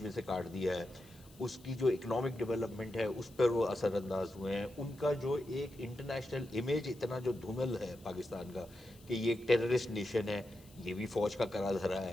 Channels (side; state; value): left; noise; hiss, 25 dB below the sound